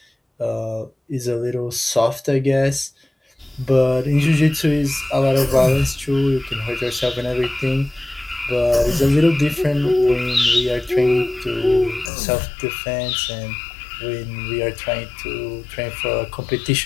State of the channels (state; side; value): drops out; right; at 12.1 s